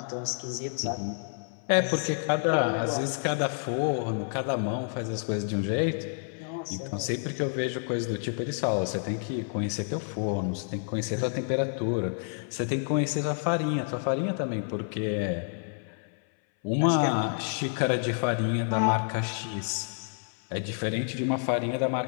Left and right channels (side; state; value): right; silent; 59 dB below the other